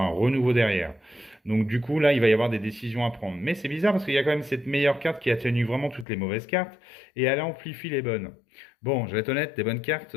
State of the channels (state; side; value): drops out; right; at 6.1 s